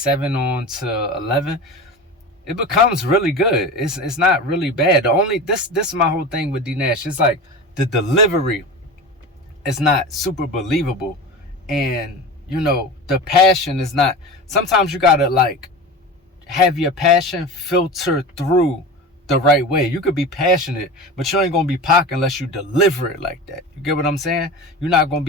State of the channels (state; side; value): normal; both; correlation 0.30